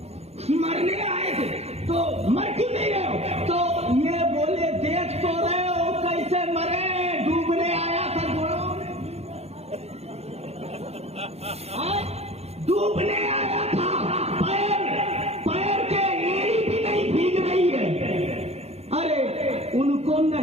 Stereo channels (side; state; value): left; late; 0.30 ms